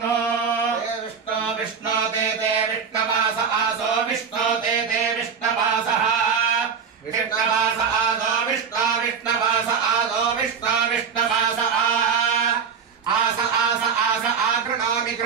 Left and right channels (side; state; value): left; quieter; 6.3 dB